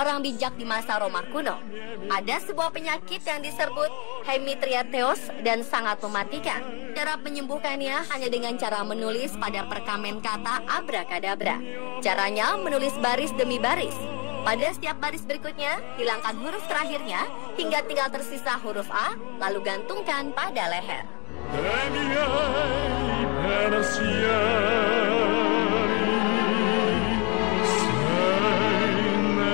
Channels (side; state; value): right; quieter; 30.5 dB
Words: bijak di masa Roma kuno. Ada sebuah penyakit yang disebut hemitriateos dan sangat mematikan. Cara menyembuhkannya hanya dengan cara menulis pada perkamen kata abrakadabra. Caranya menulis baris demi baris. Pada setiap baris berikutnya, hilangkan huruf terakhirnya hingga tinggal tersisa huruf A, lalu gantungkan pada leher.